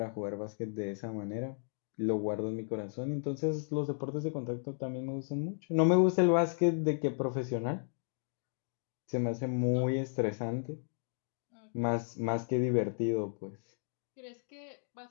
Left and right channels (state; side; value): silent; right; digital silence